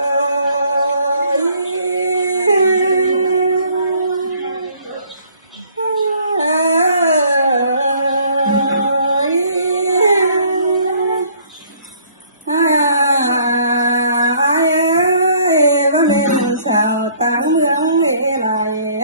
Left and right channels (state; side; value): inverted; both; correlation -0.60